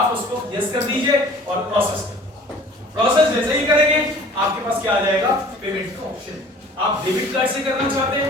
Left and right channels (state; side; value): normal; both; correlation 0.49